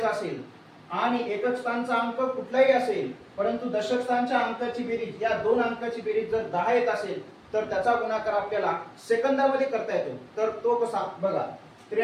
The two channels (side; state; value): both; identical; correlation 1.00